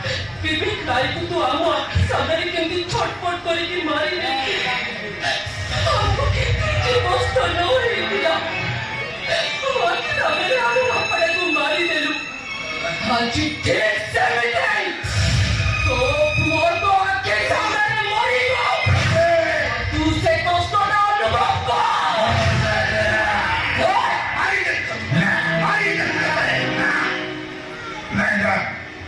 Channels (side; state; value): both; identical; correlation 1.00